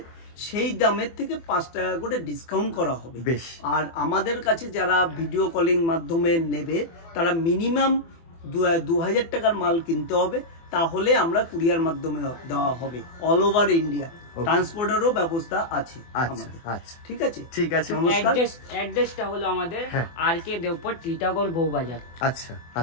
সেই দামের থেকে 5 টাকা করে ডিসকাউন্ট করা হবে। আর আমাদের কাছে যারা ভিডিও কলিং মাধ্যমে নেবে তারা মিনিমাম 2000 টাকার মাল কিনতে হবে, তাহলে আমরা কুরিয়ার মাধ্যমে দেওয়া হবে। অল ওভার ইন্ডিয়া ট্রান্সপোর্টেরও ব্যবস্থা আছে আমাদের। আচ্ছা, ঠিক আছে, ঠিক আছে। অ্যাড্রেসটা হলো আমাদের আরকে দেওপর টিটাগড় বউবাজার। আচ্ছা,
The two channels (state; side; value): late; right; 24 ms